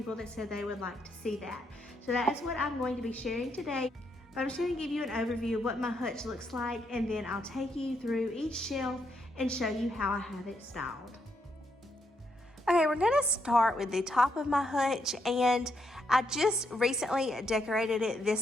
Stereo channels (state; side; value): normal; both; correlation 0.77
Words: that said they would like to see that. So that is what I'm going to be sharing today. But I'm just going to give you an overview of what my hutch looks like, and then I'll take you through each shelf and show you how I have it styled. Okay, we're gonna start with the top of my hutch, and I just recently decorated it